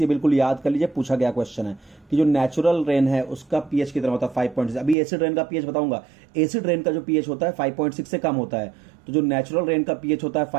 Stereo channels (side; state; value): left; drops out; at 5.0 s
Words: ये बिल्कुल याद कर लीजिए, पूछा गया क्वेश्चन है कि जो नेचुरल रेन है उसका पीएच कितना होता है, 5.6। अभी एसिड रेन का पीएच बताऊंगा। एसिड रेन का जो पीएच होता है 5.6 से कम होता है, तो जो नेचुरल रेन का पीएच होता है